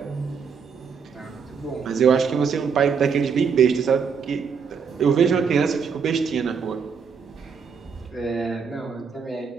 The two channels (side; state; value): left; quieter; 6.1 dB